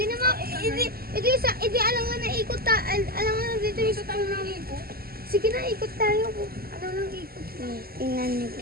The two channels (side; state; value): left; late; 0.44 ms